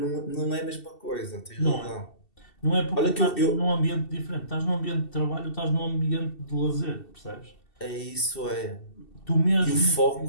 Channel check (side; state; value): right; late; 2.7 ms